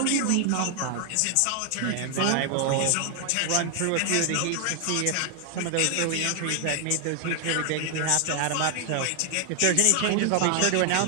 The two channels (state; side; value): different; both; correlation 0.00